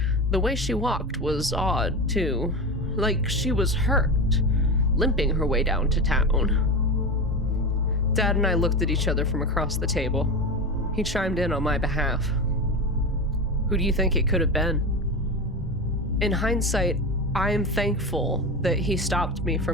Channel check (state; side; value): normal; both; correlation 0.22